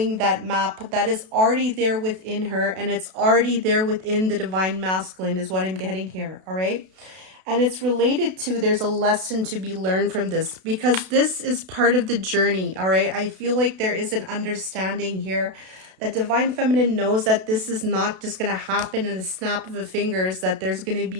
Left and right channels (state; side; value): late; left; 32 ms